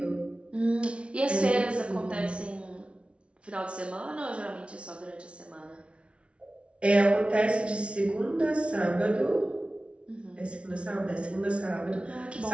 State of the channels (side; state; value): left; late; 0.060 ms